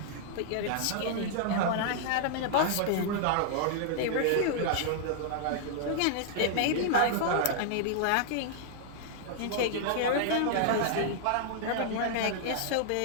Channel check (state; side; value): different; both; correlation -0.01